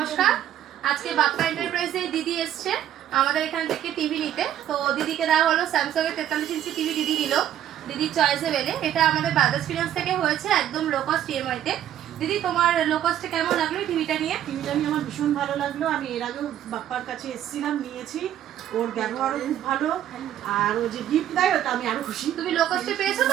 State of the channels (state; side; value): quieter; left; 11.3 dB